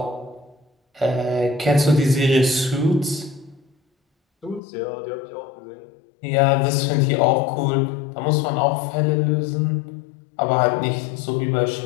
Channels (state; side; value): drops out; right; at 4.6 s